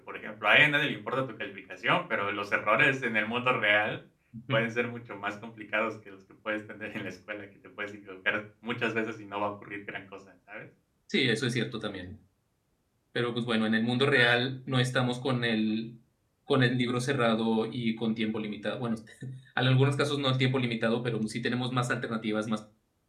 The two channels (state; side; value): identical; both; correlation 1.00